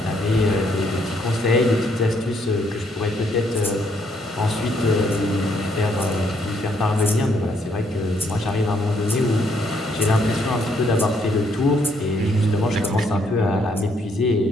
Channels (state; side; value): normal; both; correlation 0.71